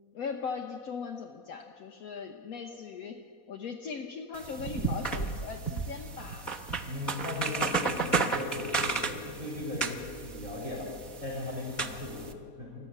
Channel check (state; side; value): late; right; 4.1 ms